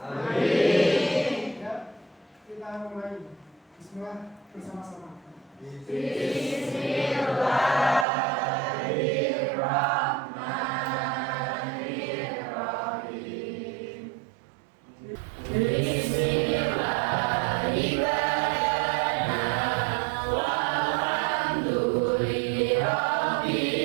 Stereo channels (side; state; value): left; drops out; at 8.1 s